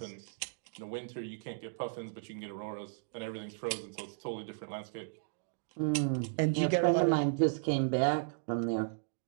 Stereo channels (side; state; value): left; silent; digital silence